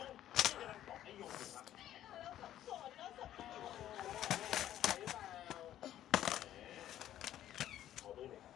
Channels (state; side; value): quieter; right; 12.2 dB